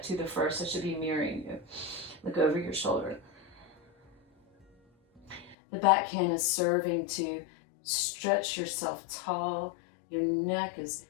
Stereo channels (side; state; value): right; drops out; at 5.6 s